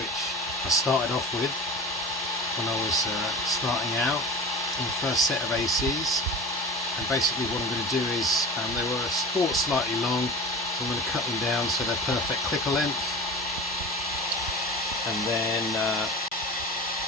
I started off with when I was starting out in the first set of ACs. And basically what I'm going to do is, they were sport slightly long, so I'm going to cut them down so they're perfect clicker length, and then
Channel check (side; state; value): both; normal; correlation 0.32